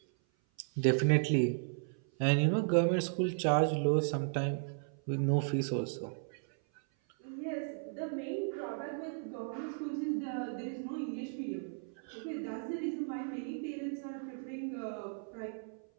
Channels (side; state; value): left; silent; 54 dB below the other